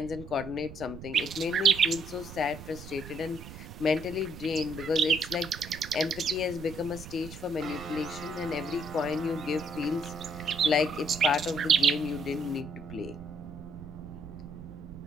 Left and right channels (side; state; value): right; noise; rumble, 13 dB below the sound